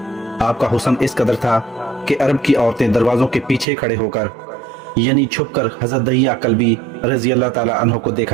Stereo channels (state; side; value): drops out; left; at 3.7 s